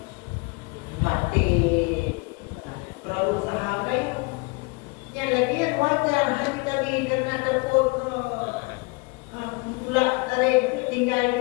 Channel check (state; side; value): quieter; right; 28.5 dB